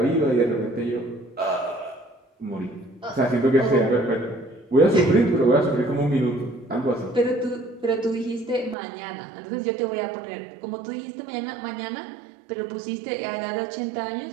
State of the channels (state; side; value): drops out; left; at 8.8 s